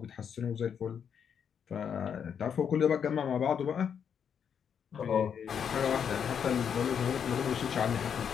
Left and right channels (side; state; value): right; quieter; 7.6 dB